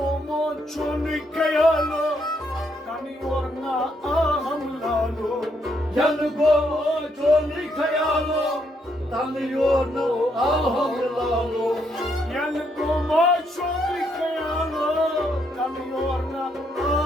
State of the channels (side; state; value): both; normal; correlation 0.75